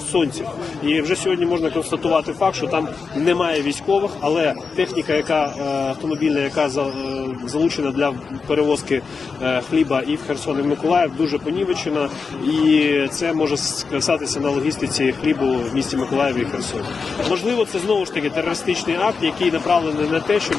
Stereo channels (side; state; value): right; quieter; 5.0 dB